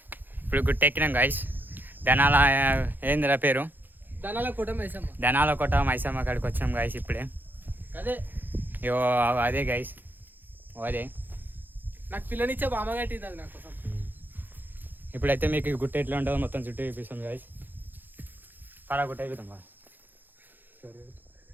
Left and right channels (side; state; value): left; late; 0.089 ms